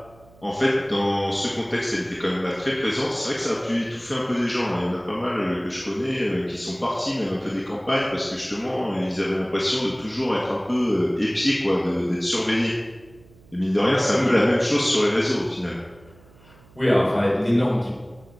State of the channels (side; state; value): right; noise; hum, 26 dB below the sound